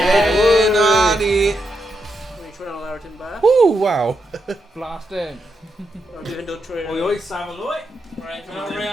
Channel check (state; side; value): normal; both; correlation 0.83